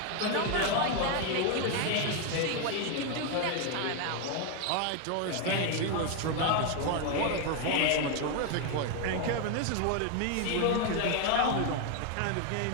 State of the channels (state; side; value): different; both; correlation 0.01